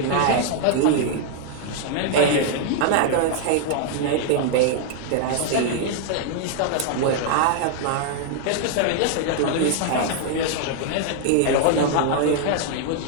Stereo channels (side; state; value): both; different; correlation 0.00